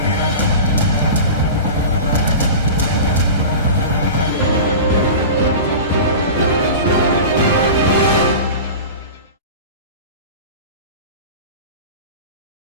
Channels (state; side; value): inverted; both; correlation -0.32